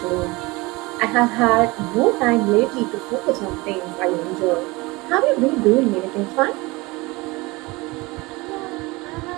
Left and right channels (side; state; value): left; quieter; 23.4 dB